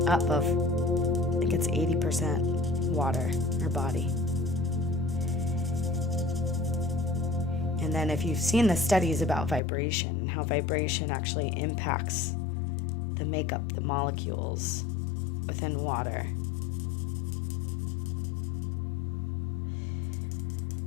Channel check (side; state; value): right; drops out; at 9.6 s